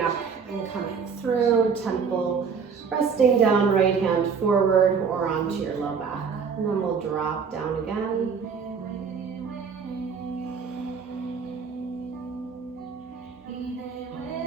up and coming through, temple resting down, right hand forward or onto your low back. And then we'll drop down again.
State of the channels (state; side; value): quieter; left; 5.9 dB